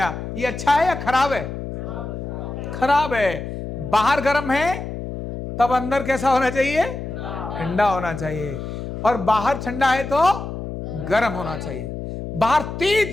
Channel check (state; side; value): noise; left; hum, 7 dB below the sound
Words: ये अच्छा है या खराब है? खराब है। बाहर गर्म है, तब अंदर कैसा होना चाहिए? ठंडा होना चाहिए। और बाहर ठंडा है तो गर्म होना चाहिए। बाहर तेज